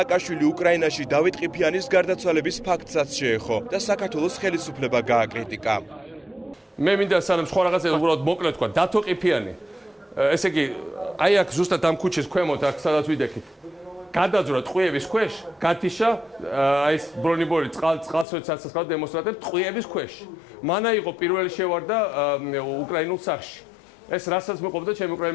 უკრაინაში დავით ყიფიანის გარდაცვალების ფაქტსაც შეეხო და საქართველოს ხელისუფლება გააკრიტიკა. მე მინდა სანამ სხვა რაღაცა უბრალოდ მოკლედ თქვა, დათო ყიფიანი. ესე იგი, აი აქ ზუსტად ამ ქუჩის ქვემოთ, აქ სადაც ვიდექით. გადაძვრა ტყვიების ქვეშ, გათიშა აი ეს ბრონიბორი წყალსაცავ დემონსტრანტებს ტყვიების ქვეშ. მანა იყო პირველი შევარდა უკრაინულ სახში. ეს რასაც მეყოფდა ჩემი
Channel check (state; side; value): drops out; right; at 18.2 s